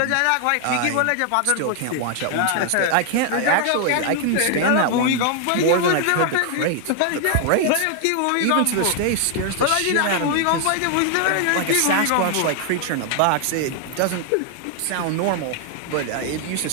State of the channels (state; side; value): different; both; correlation 0.00